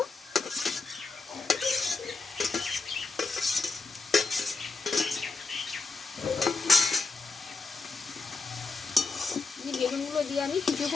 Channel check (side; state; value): right; quieter; 3.9 dB